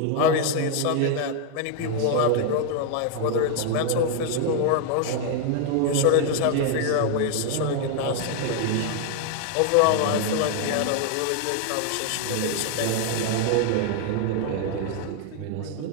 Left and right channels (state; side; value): different; both; correlation 0.00